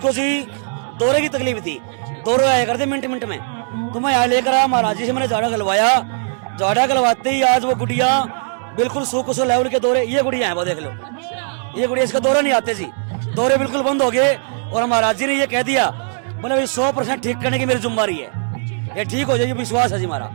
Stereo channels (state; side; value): silent; left; digital silence